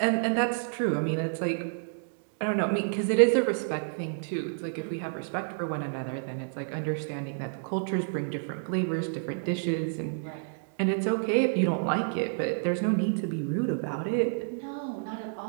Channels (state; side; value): silent; left; digital silence